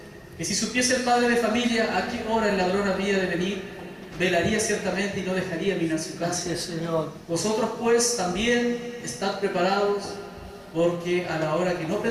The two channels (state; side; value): identical; both; correlation 1.00